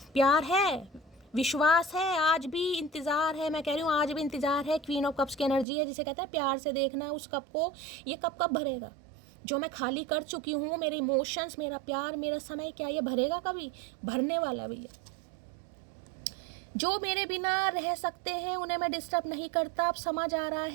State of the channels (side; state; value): left; drops out; at 5.7 s